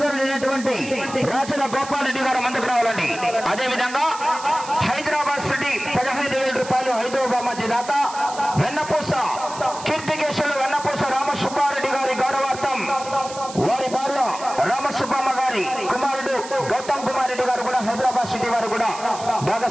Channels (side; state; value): right; noise; hiss, 14 dB below the sound